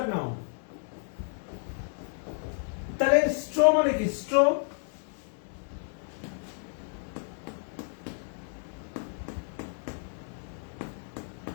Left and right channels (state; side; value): silent; right; 55 dB below the other